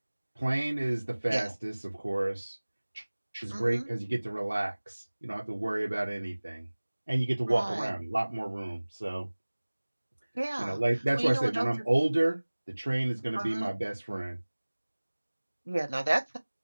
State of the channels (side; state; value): both; inverted; correlation -1.00